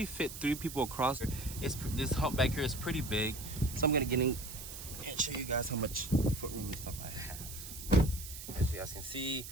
fit 3 people across. This hump back here is pretty big, so I'm gonna get in and show you guys how much footroom and stuff I have. As you guys can see,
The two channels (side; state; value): right; noise; hiss, 11 dB below the sound